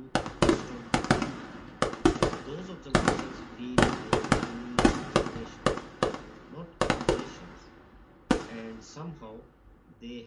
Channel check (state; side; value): identical; both; correlation 1.00